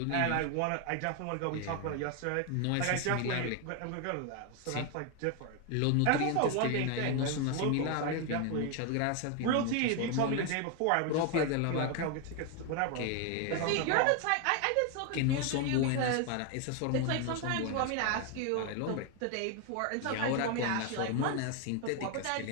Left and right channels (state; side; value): different; both; correlation 0.01